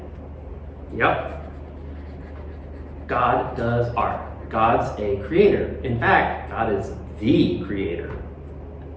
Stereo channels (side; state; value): both; identical; correlation 1.00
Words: Yep. God does art. God's a creator. In fact, God is the creator.